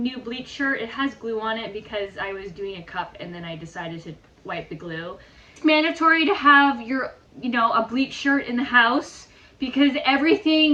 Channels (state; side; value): identical; both; correlation 1.00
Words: bleach shirt. It has glue on it because I was doing a cup and then I decided to wipe the glue. It's mandatory to have your, you know, a bleach shirt in the house because